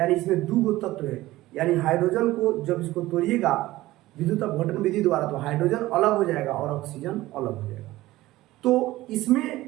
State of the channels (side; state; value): left; quieter; 17.1 dB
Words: इसमें दो तत्व है। यानी हाइड्रोजन को जब इसको तोड़िएगा विद्युत अपघटन विधि द्वारा तो हाइड्रोजन अलग हो जाएगा और ऑक्सीजन अलग हो जाएगा। तो